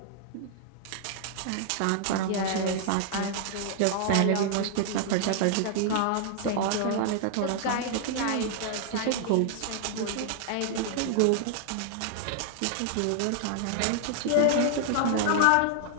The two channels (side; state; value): both; different; correlation -0.01